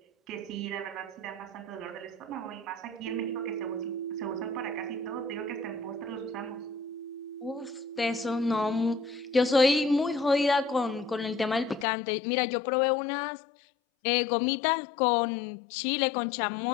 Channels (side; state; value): right; drops out; at 11.9 s